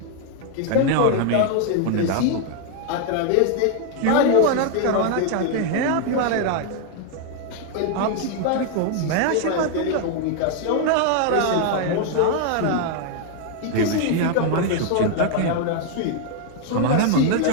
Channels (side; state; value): both; different; correlation 0.00